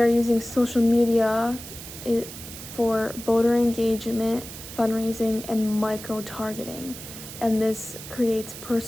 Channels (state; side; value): noise; right; hiss, 12 dB below the sound